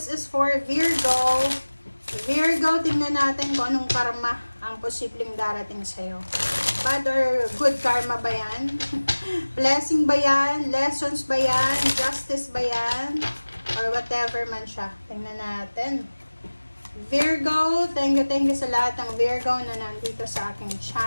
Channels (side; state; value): both; inverted; correlation -1.00